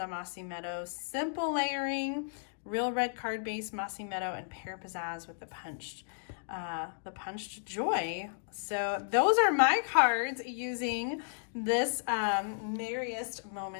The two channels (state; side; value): silent; right; digital silence